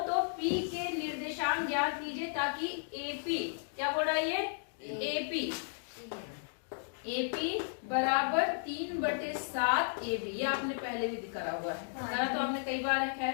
तो p के निर्देशांक ज्ञात कीजिए ताकि AP, क्या बोल रहा है ये? AP बराबर 3/7 AB, ये आपने पहले भी दिखा हुआ है, तो आपने कई बार रखा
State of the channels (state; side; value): silent; right; digital silence